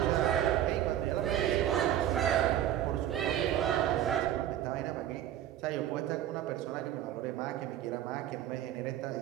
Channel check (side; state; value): left; quieter; 11.6 dB